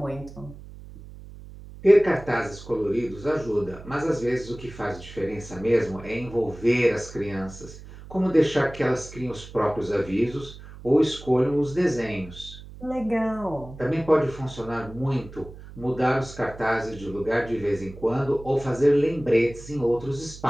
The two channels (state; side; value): noise; right; hum, 16 dB below the sound